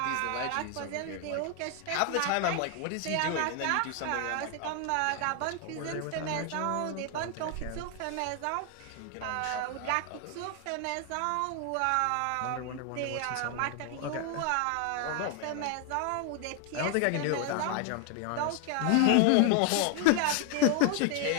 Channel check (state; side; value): different; both; correlation 0.00